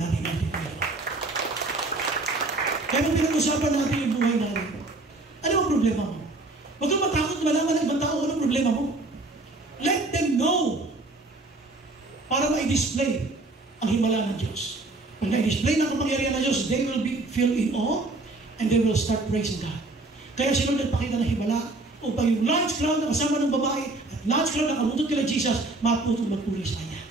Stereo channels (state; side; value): quieter; left; 3.0 dB